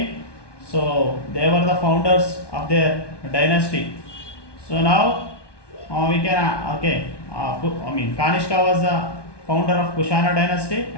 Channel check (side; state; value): right; late; 1.2 ms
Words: so they were the founders of their dynasty. So now we can Kanishka was the founder of Kushana dynasty